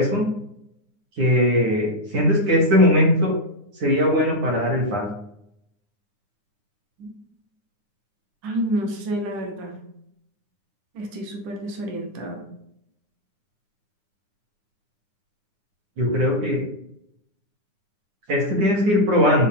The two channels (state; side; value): late; left; 9.7 ms